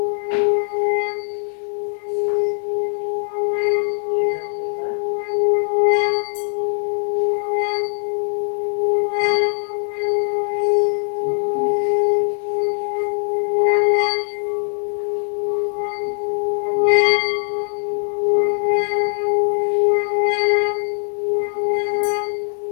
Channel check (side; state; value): right; silent; digital silence